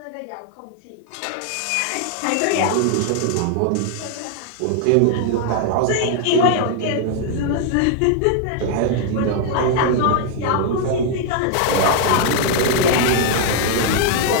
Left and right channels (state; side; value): different; both; correlation 0.00